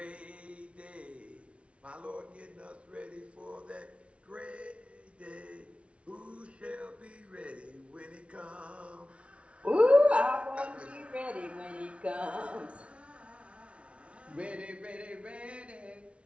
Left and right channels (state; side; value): late; left; 0.061 ms